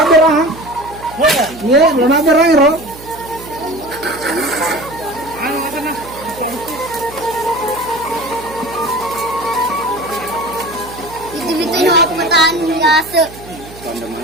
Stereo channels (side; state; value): right; noise; hum, 17 dB below the sound